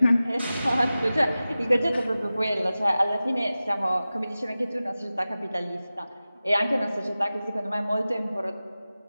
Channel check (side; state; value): both; inverted; correlation -0.95